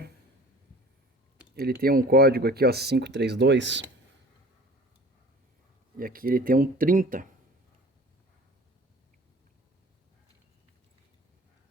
ele tem um código aqui, ó, 532. E aqui ele tem um 30.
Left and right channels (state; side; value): normal; both; correlation 0.45